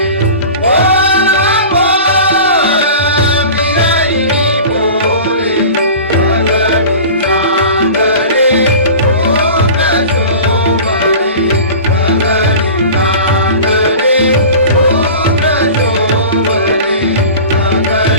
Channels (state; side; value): inverted; both; correlation -0.37